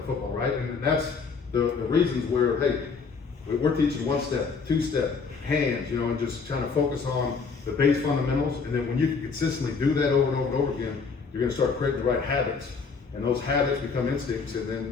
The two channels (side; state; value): right; quieter; 5.1 dB